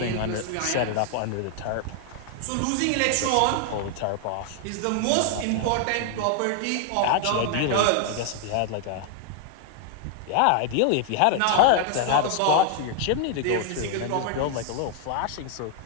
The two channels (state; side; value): different; both; correlation 0.00